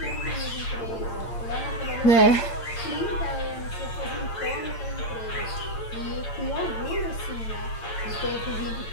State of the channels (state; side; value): late; right; 8.8 ms